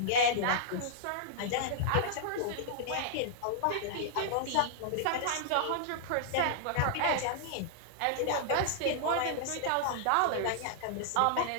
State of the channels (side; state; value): both; different; correlation -0.01